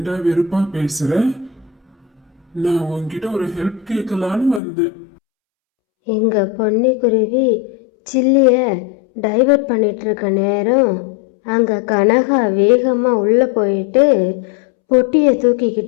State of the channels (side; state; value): right; drops out; at 4.6 s